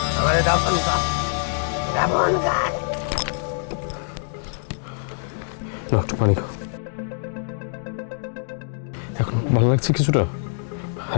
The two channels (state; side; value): silent; right; digital silence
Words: আমারে দাফন কর, দাফন কর। না একটু পানি খাও, এখন ভালো লাগছে কিছুটা,